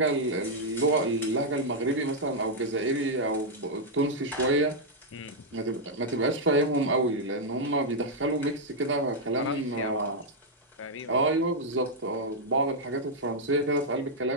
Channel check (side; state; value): both; normal; correlation -0.04